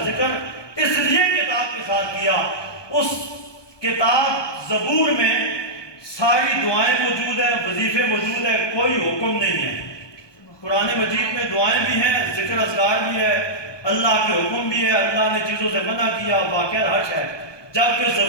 ذکر اس لیے کتاب کے ساتھ کیا، اس کتاب زبور میں ساری دعائیں موجود ہیں، وظیفے موجود ہیں، کوئی حکم نہیں ہے۔ قرآن مجید میں دعائیں بھی ہیں، ذکر اذکار بھی ہے، اللہ کے حکم بھی ہے، اللہ نے چیزوں سے منع کیا، واقعہ حش ہے، جبکہ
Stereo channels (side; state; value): right; late; 1.2 ms